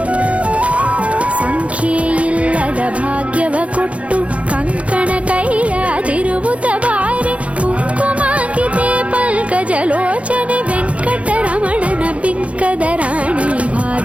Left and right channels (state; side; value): late; left; 0.063 ms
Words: ಸಂಖ್ಯೆಯಿಲ್ಲದ ಭಾಗ್ಯವ ಕೊಟ್ಟು ಕಂಕಣ ಕೈಯಾದಿರುವುದ ಬಾರೆ, ಕುಂಕುಮಾಂಕಿತೆ ಪಲ್ಕಜಲೋಚನೆ ವೆಂಕಟರಮಣನ ಬಿಂಕದ ರಾಣಿ